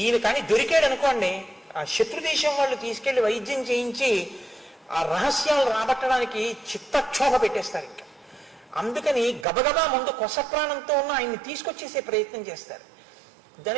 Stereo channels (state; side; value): drops out; left; at 9.5 s